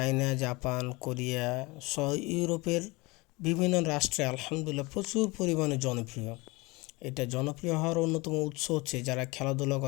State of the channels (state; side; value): quieter; right; 24.4 dB